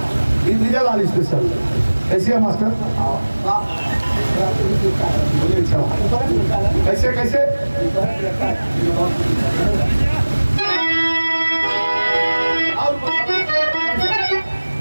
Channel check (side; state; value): both; inverted; correlation -1.00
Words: ये विजयलाल स्पेशल ऐसे है मास्टर बोलिए कैसे कैसे